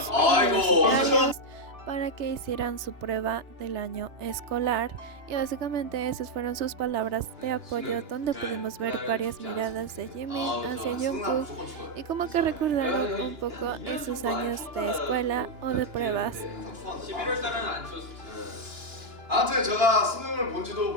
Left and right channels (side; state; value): left; late; 2.9 ms